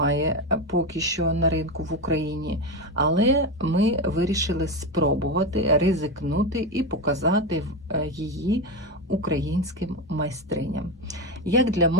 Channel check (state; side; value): normal; both; correlation 0.15